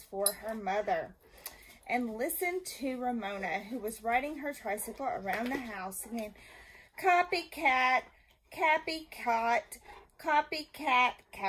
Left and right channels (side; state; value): both; identical; correlation 1.00